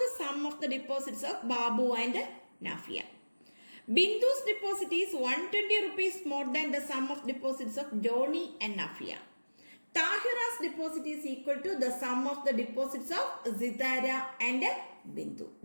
sum of the deposits of Babu and Nafia. Bindu's deposit is 120 rupees more than the sum of deposits of Johnny and Nafia. Tahira's deposit is equal to the sum of the deposits of Sitara and Bindu.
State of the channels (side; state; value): both; inverted; correlation -1.00